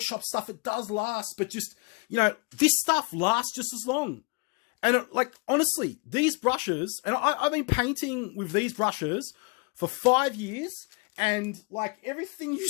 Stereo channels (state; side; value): quieter; right; 31.1 dB